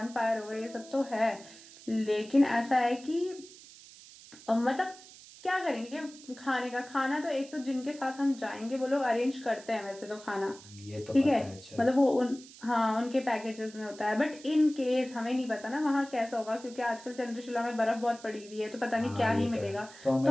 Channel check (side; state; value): right; noise; hiss, 19 dB below the sound